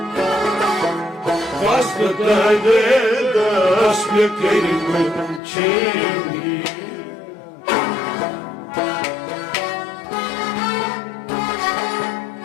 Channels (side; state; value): right; drops out; at 5.4 s